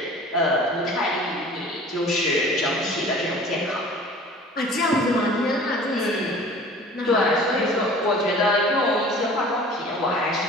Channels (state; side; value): normal; both; correlation 0.45